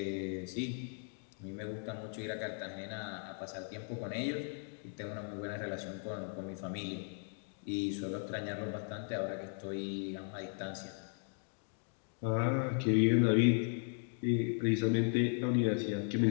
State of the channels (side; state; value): right; silent; 53 dB below the other